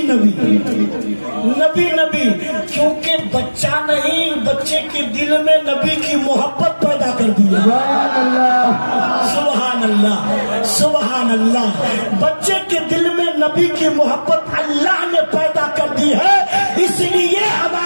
نبی نبی نبی, کیونکہ بچہ نہیں, بچے کے دل میں نبی کی محبت پیدا کر دی ہے. سبحان اللہ سبحان اللہ. بچے کے دل میں نبی کی محبت اللہ نے پیدا کر دی ہے, اس لیے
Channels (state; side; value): inverted; both; correlation -1.00